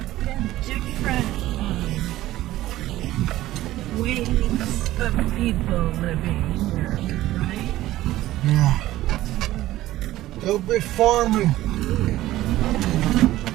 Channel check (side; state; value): left; quieter; 15.4 dB